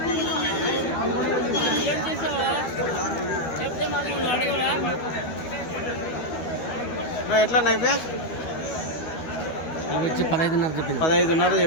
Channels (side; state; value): right; late; 12 ms